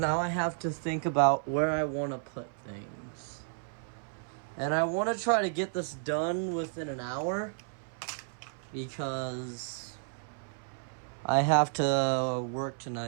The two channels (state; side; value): silent; left; 56 dB below the other